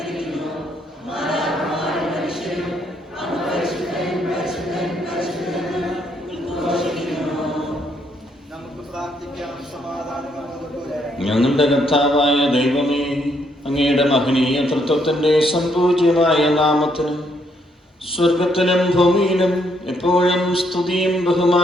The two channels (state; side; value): normal; both; correlation 0.72